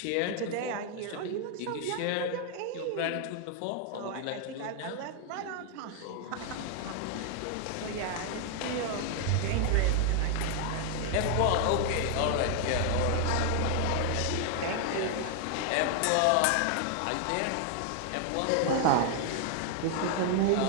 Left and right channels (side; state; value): both; different; correlation 0.00